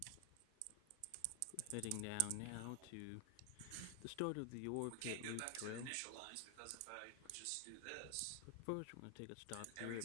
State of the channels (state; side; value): different; both; correlation 0.00